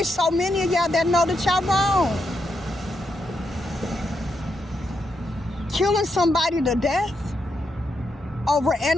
so many of y'all that know that y'all wrong. Killing somebody to death over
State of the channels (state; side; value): normal; both; correlation 0.82